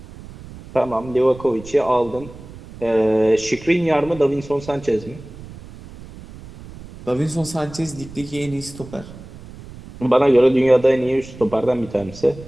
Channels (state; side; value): noise; right; rumble, 17 dB below the sound